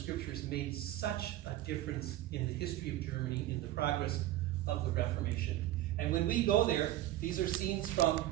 made such a difference in the history of Germany, in the progress of the Reformation. And when we go there, these are scenes from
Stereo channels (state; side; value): quieter; left; 14.5 dB